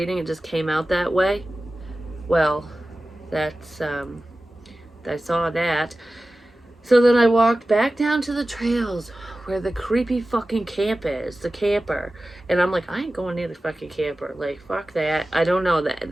It just came out that way. Well, that's, I saw that. So then I walked back down to the trails where the creepy fucking camp is, the camper. And I'm like, I ain't going near the fucking camper. Like, fuck that. I don't know that.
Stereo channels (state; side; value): normal; both; correlation 0.95